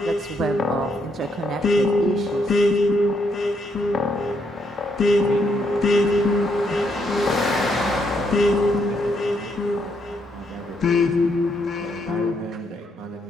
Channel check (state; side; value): normal; both; correlation 0.75